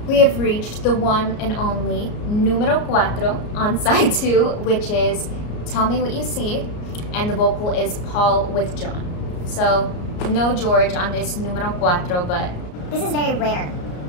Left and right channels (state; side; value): late; right; 34 ms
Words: We have reached the one and only numero cuatro on side 2, which is Tell Me What You See, and the vocal is Paul with John. So no George on this numero cuatro, but This is very rare,